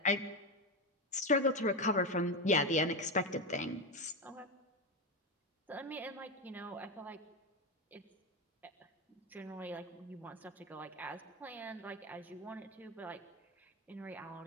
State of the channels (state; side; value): normal; both; correlation 0.14